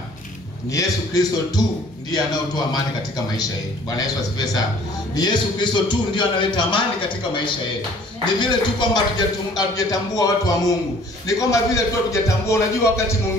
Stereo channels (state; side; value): normal; both; correlation 0.54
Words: Ni Yesu Kristo tu ndiye anayotoa amani katika maisha yetu. Bwana Yesu asifiwe sana. Ni Yesu Kristo tu ndiye analeta amani katika maisha yetu. Ni vile tu kwamba hatujatambua watu wa Mungu. Ni kwamba vile tu hatujatambua. Unajua wakati